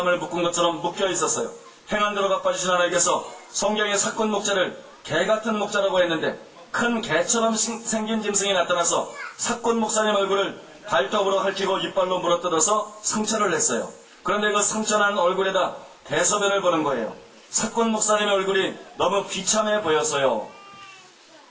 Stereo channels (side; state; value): both; identical; correlation 1.00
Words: 묶은 것처럼 묶여 있었어요. 행한 대로 갚아주신 하나님께서 성경의 사꾼 목자를 개 같은 목자라고 했는데 큰 개처럼 생긴 짐승이 나타나서 사꾼 목사님 얼굴을 발톱으로 핥히고 이빨로 물어뜯어서 상처를 냈어요. 그런데 그 상처난 얼굴에다 대소변을 보는 거예요. 사꾼 목사님의 얼굴이 너무 비참해 보였어요.